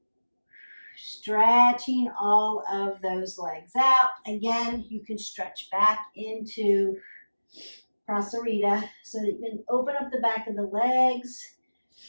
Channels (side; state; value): both; inverted; correlation -1.00